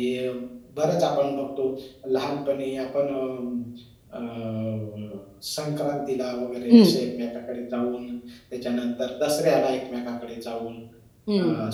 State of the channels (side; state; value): both; identical; correlation 1.00